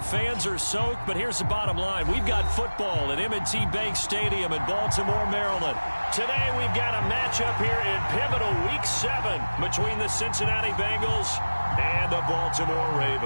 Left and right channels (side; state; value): both; inverted; correlation -1.00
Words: fans are soaked. But here's the bottom line. We've got football at M&T Bank Stadium in Baltimore, Maryland. Today we've got a matchup here in pivotal Week 7 between the Cincinnati Bengals and the Baltimore